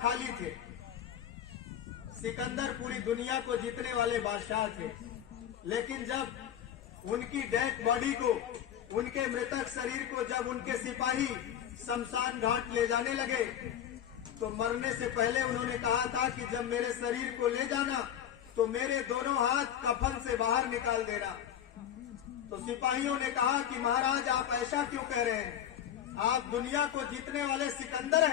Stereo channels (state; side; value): quieter; right; 10.1 dB